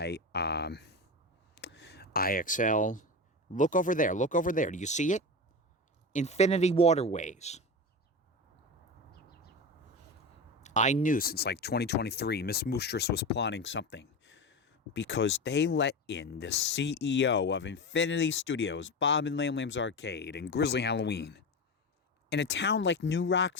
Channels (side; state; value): both; normal; correlation 0.22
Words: IXL. Look over there. Look over there. Do you see it? Infinity Waterways. I knew since like 2023 Miss Moostress was plotting something, because they let in the CEO of Infinity Studios, Bob and Lam Lam's Arcade, and Grizzly Halloween in a town like New